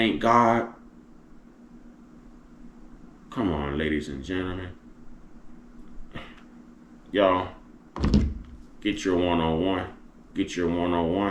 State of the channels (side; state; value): both; identical; correlation 1.00